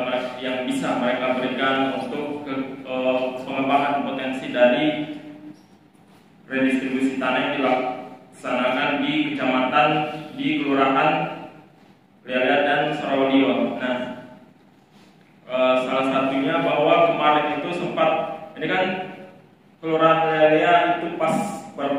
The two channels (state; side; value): identical; both; correlation 1.00